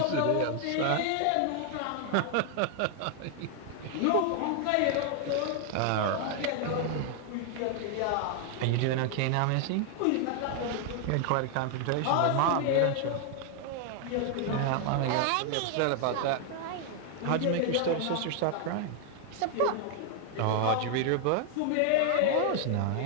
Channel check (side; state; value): both; different; correlation 0.00